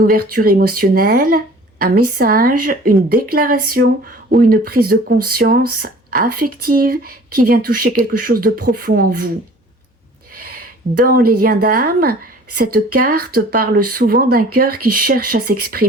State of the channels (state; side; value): normal; both; correlation 0.48